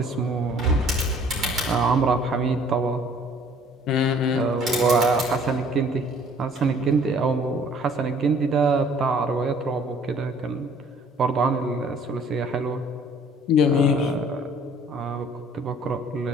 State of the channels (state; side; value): normal; both; correlation 0.56